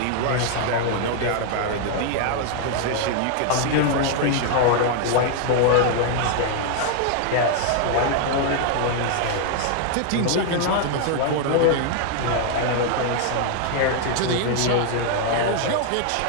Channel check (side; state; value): both; different; correlation 0.00